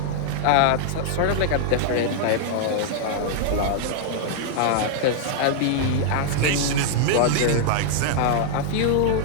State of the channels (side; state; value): both; different; correlation -0.01